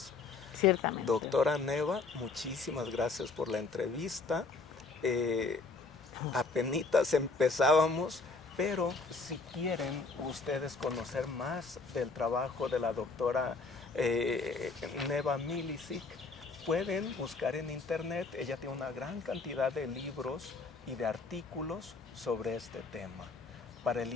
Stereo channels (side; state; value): right; quieter; 4.1 dB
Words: Ciertamente. Doctora Neva, muchísimas gracias por la entrevista. Eh, Apenitas empezábamos, pero si quieren ustedes conocer más del trabajo de la doctora Neva Milicic, pueden buscar en internet. Ella tiene una gran cantidad de libros y de artículos sobre este tema. Para el